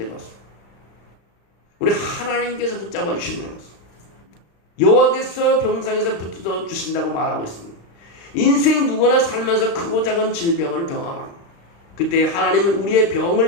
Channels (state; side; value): late; right; 36 ms